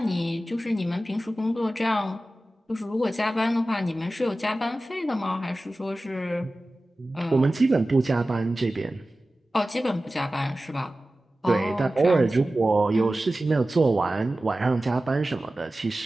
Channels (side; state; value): both; normal; correlation 0.96